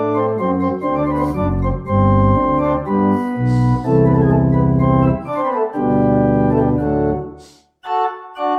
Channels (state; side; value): identical; both; correlation 1.00